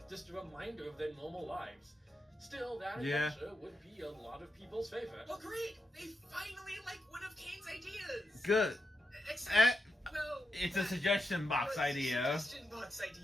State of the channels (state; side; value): normal; both; correlation 0.85